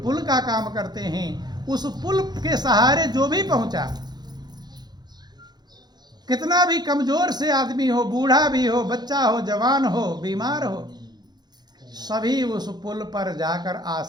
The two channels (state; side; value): late; left; 0.20 ms